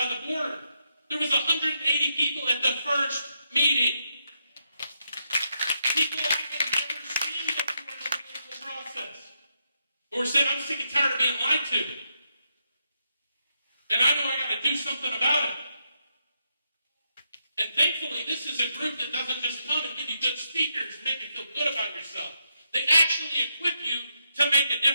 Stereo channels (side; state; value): both; inverted; correlation -0.81